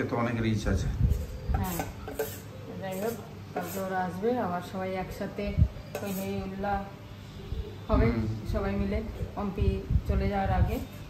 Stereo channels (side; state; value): both; identical; correlation 1.00